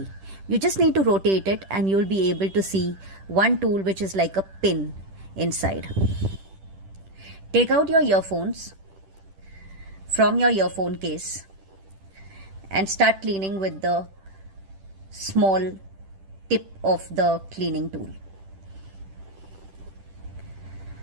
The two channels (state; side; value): late; left; 10 ms